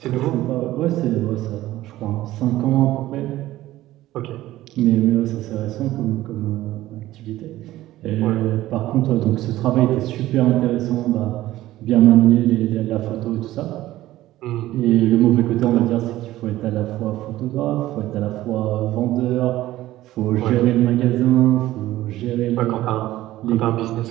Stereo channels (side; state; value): left; quieter; 15.5 dB